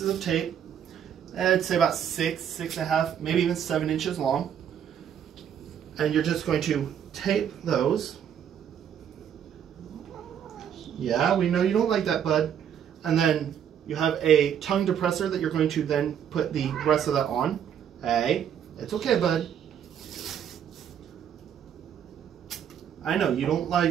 of tape, I'd say about 6.5, maybe even 7 inches long. And you're just going to tape those. Yeah, we know you don't like that, bud. And then you have a tongue depressor that you're going to then put the rest of that on. Hey, it's okay, bud. I know, you don't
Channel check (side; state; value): left; quieter; 8.9 dB